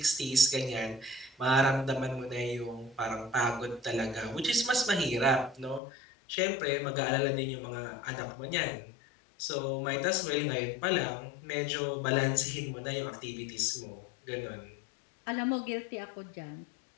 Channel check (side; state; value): right; drops out; at 5.8 s